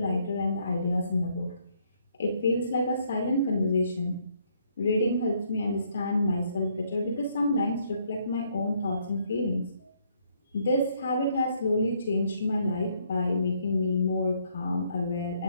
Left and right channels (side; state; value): both; inverted; correlation -0.70